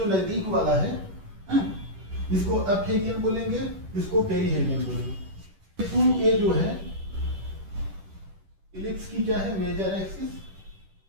नजदीक वाला है, इसको अपहेलियन बोलेंगे, इसको पेरीहेलियन बोलेंगे। ये जो है इलिप्स की क्या है, major axis,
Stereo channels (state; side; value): late; left; 10 ms